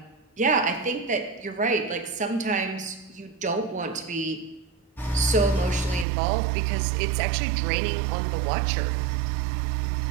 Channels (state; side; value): drops out; left; at 6.1 s